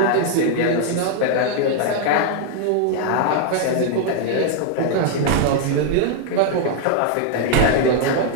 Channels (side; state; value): both; different; correlation 0.00